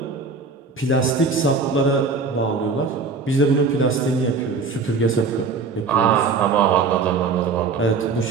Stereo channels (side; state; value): left; quieter; 4.6 dB